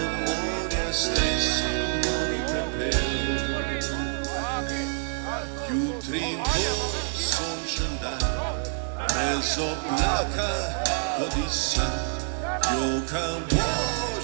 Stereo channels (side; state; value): left; silent; 60 dB below the other